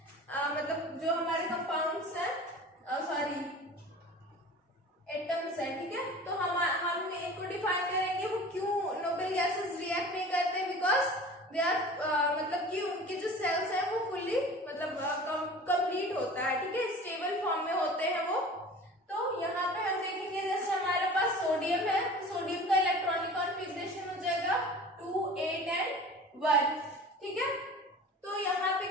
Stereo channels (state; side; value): normal; both; correlation 0.40